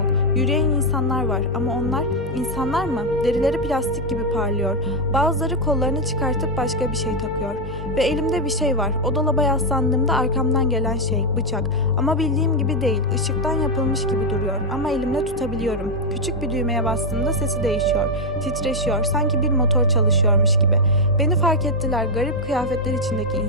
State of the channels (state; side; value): noise; left; hum, 12 dB below the sound